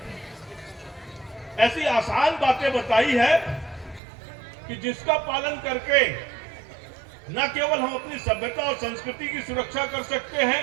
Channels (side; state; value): left; drops out; at 4.0 s